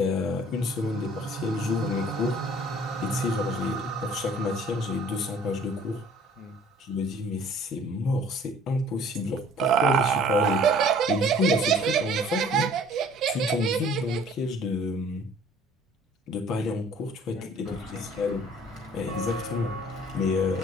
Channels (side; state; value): both; normal; correlation 0.53